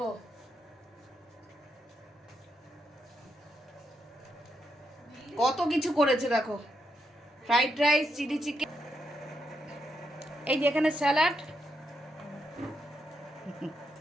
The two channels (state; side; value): normal; both; correlation 0.82